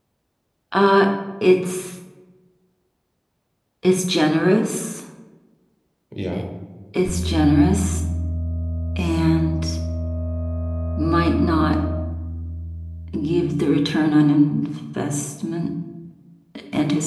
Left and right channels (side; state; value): both; identical; correlation 1.00